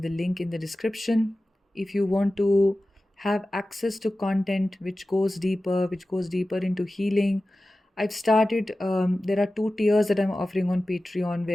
the link in the description. If you want to have access to content which goes deeper into healing, I've started. There are 2 tiers that I'm offering on Patreon,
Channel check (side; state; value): both; normal; correlation 0.95